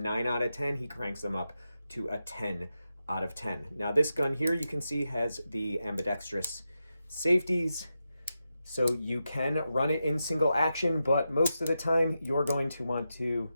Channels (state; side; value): inverted; both; correlation -0.89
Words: out of 10, he cranks them up to a 10 out of 10. Now this gun here, you can see, has the ambidextrous safeties, so you can run it in single action, but most of the time you're going to want to